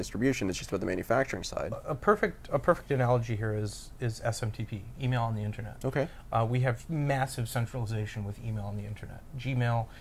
It's just about the manufacturing side. A perfect analogy here is SMTP, email on the internet. Okay. We have massive centralization with email on the internet. Gmail,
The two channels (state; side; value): identical; both; correlation 1.00